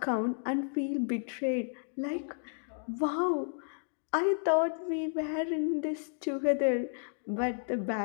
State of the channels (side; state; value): right; silent; digital silence